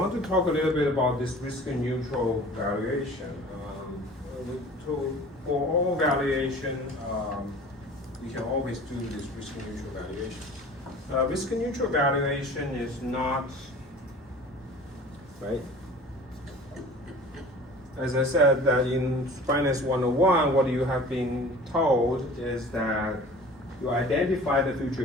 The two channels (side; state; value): both; normal; correlation 0.43